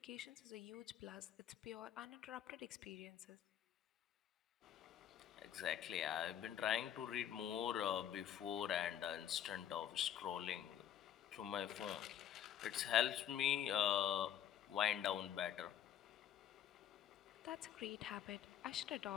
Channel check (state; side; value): quieter; right; 10.1 dB